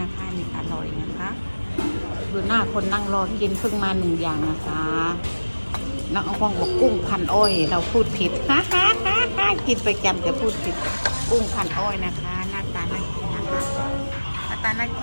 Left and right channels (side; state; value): both; inverted; correlation -1.00